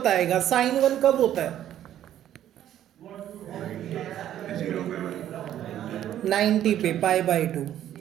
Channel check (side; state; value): left; quieter; 11.5 dB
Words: साइन 1 कब होता है, 90 पे, पाई बाई टू।